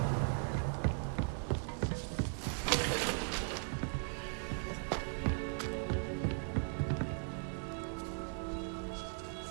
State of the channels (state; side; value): silent; left; 52 dB below the other